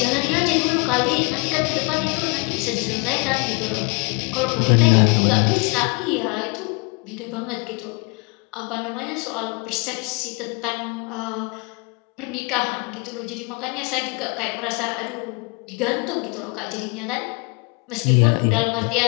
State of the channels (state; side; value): quieter; right; 30.8 dB